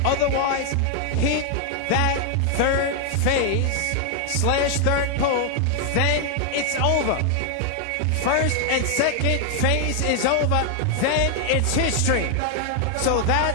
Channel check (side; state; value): both; different; correlation 0.00